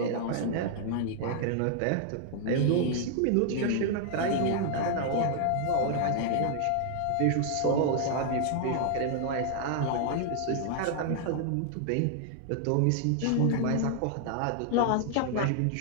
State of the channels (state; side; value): different; both; correlation 0.00